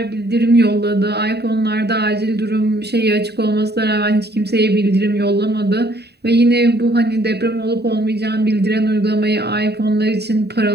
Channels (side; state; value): left; late; 0.48 ms